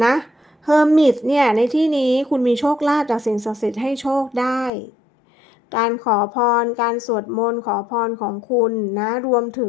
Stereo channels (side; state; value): right; drops out; at 4.7 s